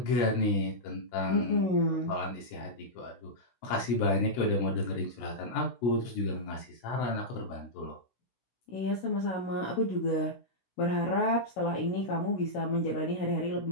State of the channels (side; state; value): right; late; 16 ms